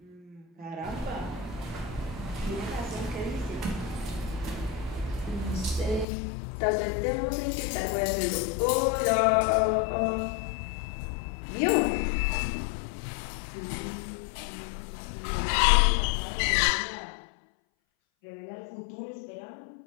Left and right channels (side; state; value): right; drops out; at 6.1 s